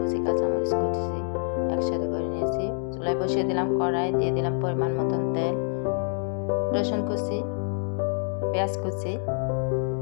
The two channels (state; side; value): silent; right; 60 dB below the other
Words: কাঁচামরিচ কুচি একসাথে করে নিয়েছি। চুলায় বসিয়ে দিলাম কড়াই, দিয়ে দিলাম পরিমাণ মতন তেল, রসুন কুচি, পেঁয়াজ কুচি,